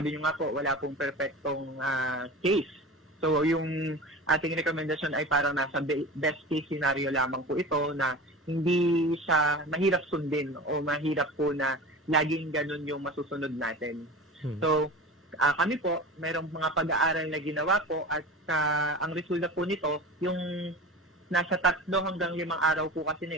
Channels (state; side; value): normal; both; correlation 0.33